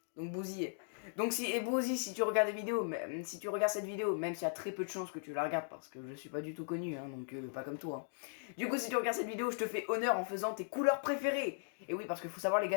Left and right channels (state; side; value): silent; right; digital silence